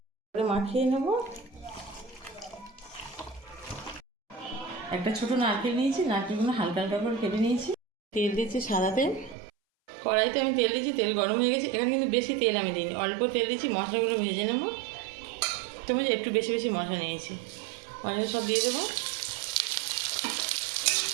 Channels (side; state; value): left; drops out; at 9.3 s